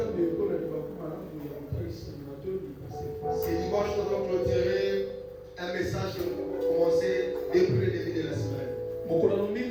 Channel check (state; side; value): identical; both; correlation 1.00